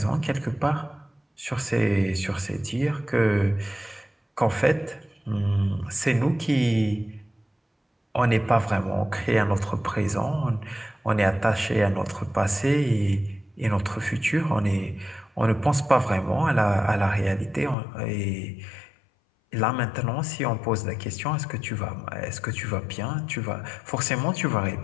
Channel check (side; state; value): right; drops out; at 17.8 s